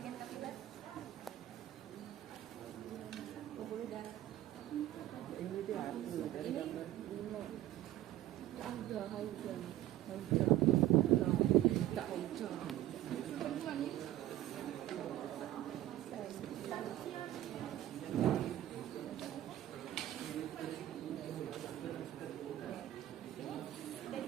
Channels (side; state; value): left; quieter; 13.9 dB